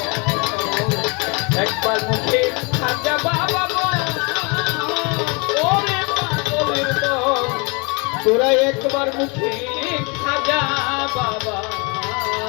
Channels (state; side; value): quieter; right; 30.8 dB